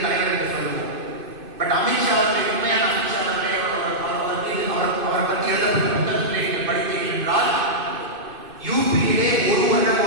தலைவர் என்று சொல்லுவோம். பட் அமித்ஷா அவர்களை, உண்மையான அமித்ஷா அவர்களை அவரை பற்றி எழுதப்பட்ட புத்தகத்திலே நீங்கள் படித்தீர்கள் என்றால், யூபியிலே ஒரு வருடம்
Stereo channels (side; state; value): left; late; 2.6 ms